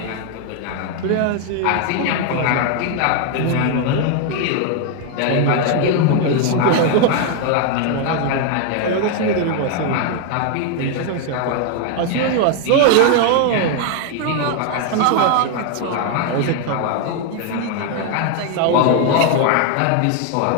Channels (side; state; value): both; different; correlation 0.01